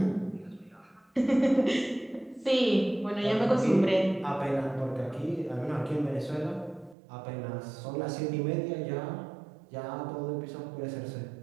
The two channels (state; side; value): drops out; left; at 7.0 s